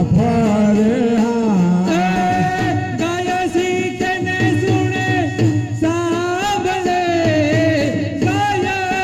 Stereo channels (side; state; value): both; identical; correlation 1.00